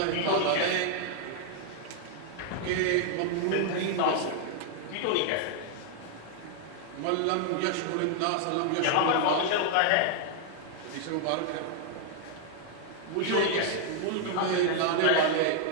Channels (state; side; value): different; both; correlation 0.00